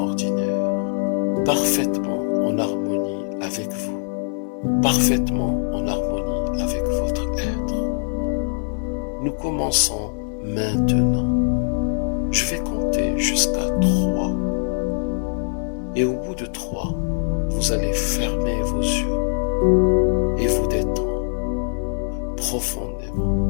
parfaitement en harmonie avec vous, parfaitement en harmonie avec votre être. Nous commençons maintenant. Je vais compter jusqu'à 3. Et au bout de 3, vous allez fermer vos yeux et vous détendre profondément.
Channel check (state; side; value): silent; right; digital silence